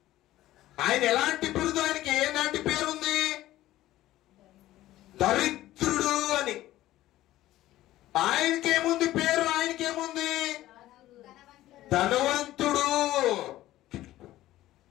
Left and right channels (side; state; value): right; quieter; 15.1 dB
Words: ఆయన ఎలాంటి బిరుదు? ఆయనకి ఏలాంటి పేరుంది? దరిద్రుడు అని. ఆయనకేముంది పేరు? ఆయనకేముంది? ధనవంతుడు.